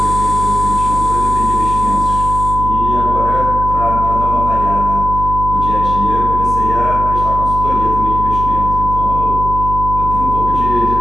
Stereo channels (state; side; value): noise; right; hum, 5 dB below the sound